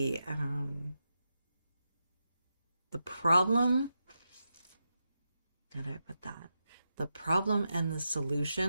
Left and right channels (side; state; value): both; inverted; correlation -0.87